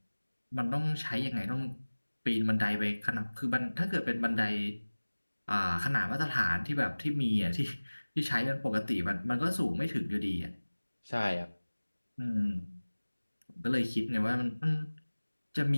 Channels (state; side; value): inverted; both; correlation -1.00